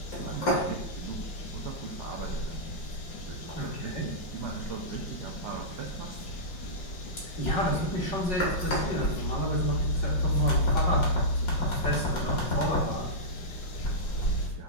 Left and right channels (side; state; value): right; late; 5.6 ms